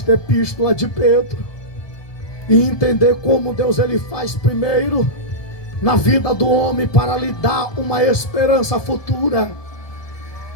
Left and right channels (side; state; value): right; late; 1.2 ms